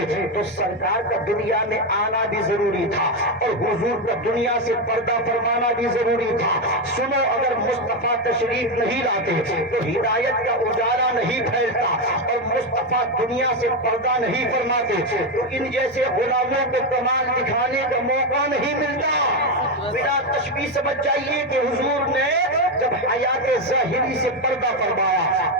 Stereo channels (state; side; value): normal; both; correlation 0.09